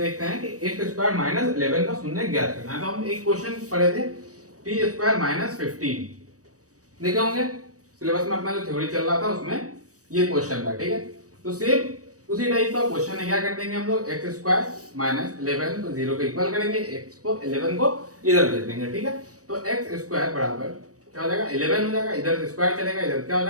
हैं कि x स्क्वायर माइनस 11 का शून्य ज्ञात करना है। तो हम एक क्वेश्चन पढ़े थे, t स्क्वायर माइनस 15 देखे होंगे सिलेबस में, अपना जो थ्योरी चल रहा था उसमें ये क्वेश्चन था। ठीक है? तो सेम उसी टाइप का क्वेश्चन है। क्या कर देंगे हम लोग? x स्क्वायर माइनस 11 को 0 के इक्वल करेंगे, x को 11 को इधर भेज देंगे। ठीक है? तो x स्क्वायर बराबर क्या हो जाएगा? 11 हो जाएगा। इधर से स्क्वायर चलेगा, इधर क्या हो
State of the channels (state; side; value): late; left; 0.66 ms